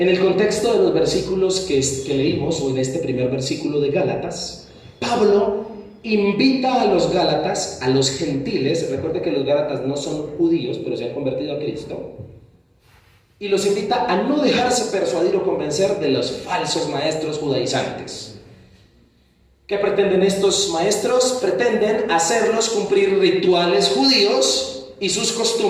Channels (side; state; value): both; identical; correlation 1.00